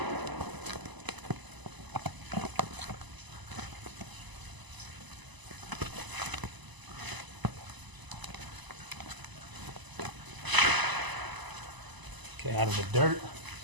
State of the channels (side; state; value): left; late; 1.0 ms